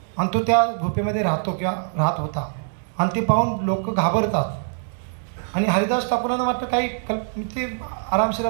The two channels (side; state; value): left; silent; digital silence